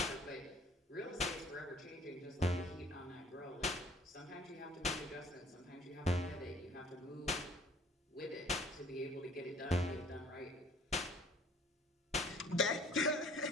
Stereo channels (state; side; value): normal; both; correlation 0.53